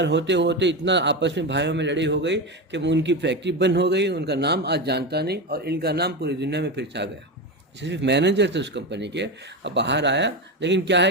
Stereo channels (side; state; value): both; normal; correlation 0.17